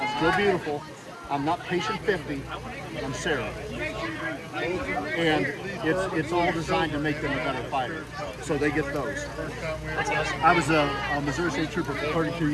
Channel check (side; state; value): both; identical; correlation 1.00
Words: still beautiful, I'm not patient 50, I'm Sarah. And it's all designed to make them a better fighter. So they get those. I was a Missouri State Trooper for 32